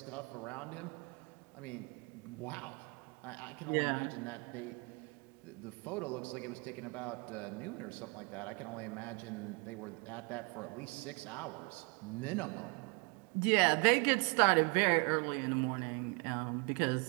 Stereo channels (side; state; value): left; quieter; 32.6 dB